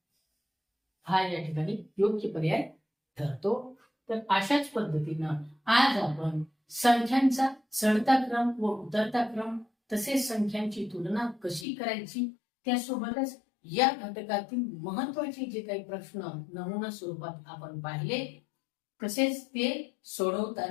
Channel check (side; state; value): right; drops out; at 11.7 s